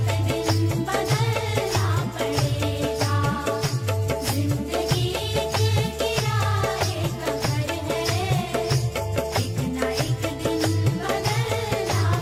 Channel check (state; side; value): identical; both; correlation 1.00